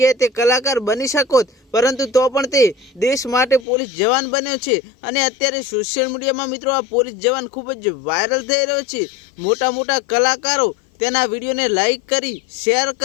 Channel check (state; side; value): drops out; right; at 3.7 s